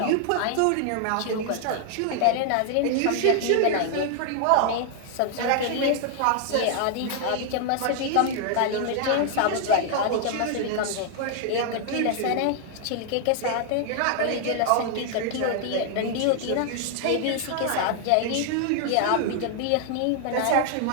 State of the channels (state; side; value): different; both; correlation 0.00